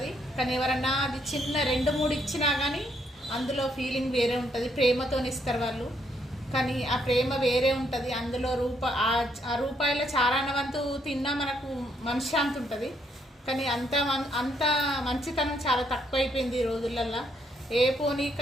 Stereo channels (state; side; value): normal; both; correlation 0.73